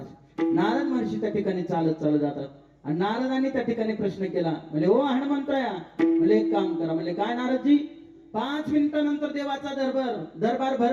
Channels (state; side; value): identical; both; correlation 1.00